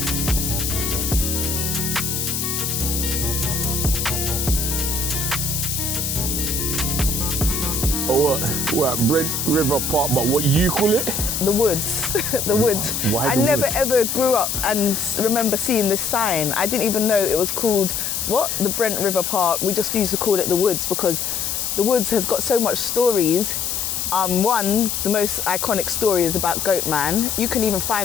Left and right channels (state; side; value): noise; left; hiss, 1 dB below the sound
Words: What, Brent River Park, but what you call it? The woods, the woods. Why I the never woods? ever grew up and remember seeing this sign. I didn't even know it was called, what? The Brent River Park. We just used to call it the woods because the woods has got so much stories. One, the most iconic story is about Goatman. You can even